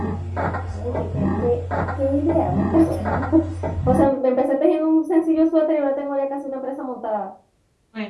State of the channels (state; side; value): identical; both; correlation 1.00